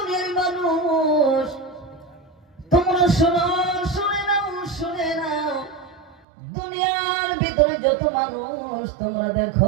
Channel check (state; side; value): drops out; left; at 6.2 s